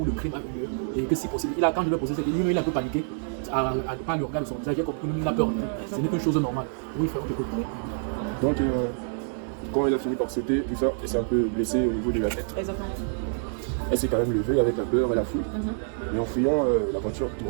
le crime a eu lieu et que si possible, quand je lui ai posé cette question, lui il a un peu paniqué à ne pas le regarder de son visage, il a compris qu'il a peur. Ce n'est qu'une chose normale. Oui, frère, on t'écoute. Donc quand elle a fini par sauter, tout ça, elle s'est un peu blessée au niveau de la tête. Exactement. Elle s'est quand même levée avec la peur et la fouille. Et en fuyant, la voiture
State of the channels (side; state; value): left; silent; digital silence